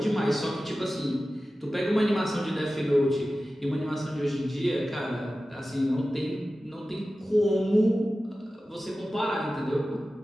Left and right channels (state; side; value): normal; both; correlation 0.95